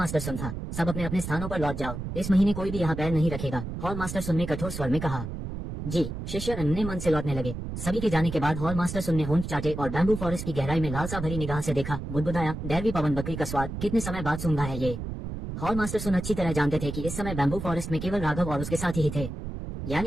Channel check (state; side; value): noise; right; rumble, 6 dB below the sound